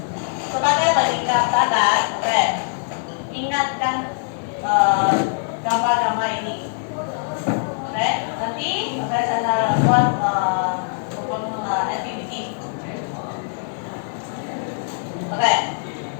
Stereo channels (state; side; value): silent; right; 55 dB below the other